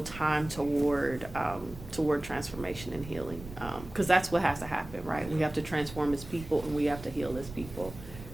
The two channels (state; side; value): noise; right; rumble, 14 dB below the sound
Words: time toward transformation and healing, because that's what has to happen, right? We have to transform as people and we have to heal as people.